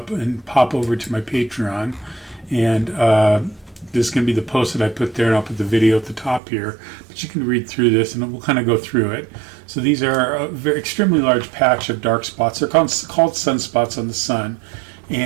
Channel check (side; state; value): left; drops out; at 6.4 s